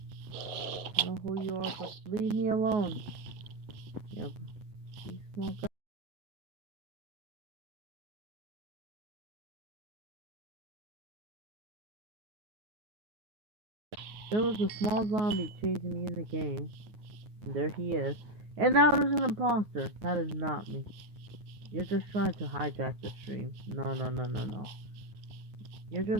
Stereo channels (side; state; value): left; late; 9.5 ms